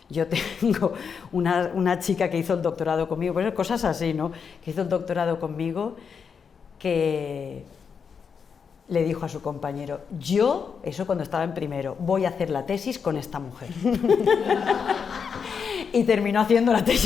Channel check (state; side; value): quieter; right; 6.3 dB